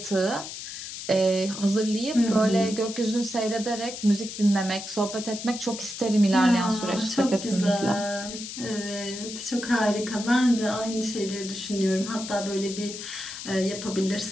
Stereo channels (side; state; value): left; noise; hiss, 9 dB below the sound